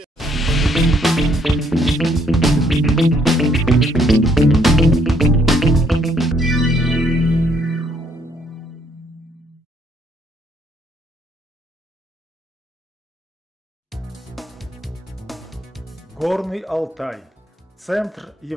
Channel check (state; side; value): normal; both; correlation 0.68